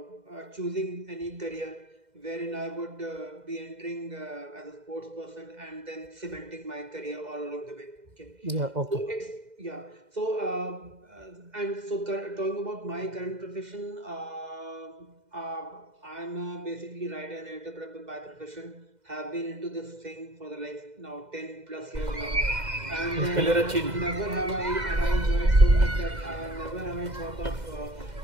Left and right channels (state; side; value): late; left; 2.0 ms